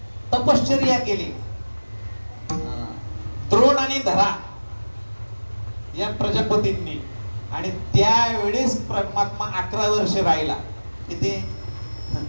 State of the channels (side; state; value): both; inverted; correlation -1.00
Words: तपश्चर्या केली. द्रोण आणि धरा या प्रजापतींनी. आणि त्यावेळेस परमात्मा 11 वर्ष राहिला. किती?